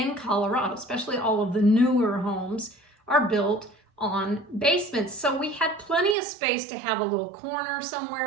Colorado, especially all of the newer homes are built on basements. So we had plenty of space to have a little corner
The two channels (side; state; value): left; drops out; at 6.2 s